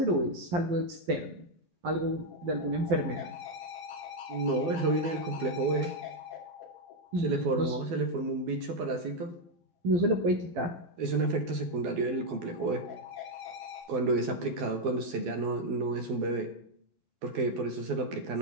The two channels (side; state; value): left; late; 12 ms